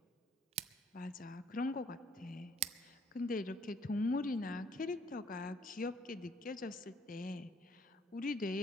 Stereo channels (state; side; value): normal; both; correlation 0.62